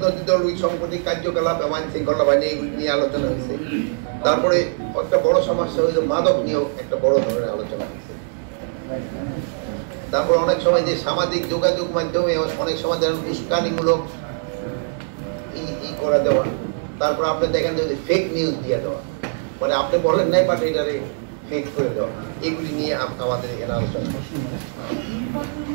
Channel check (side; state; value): left; silent; digital silence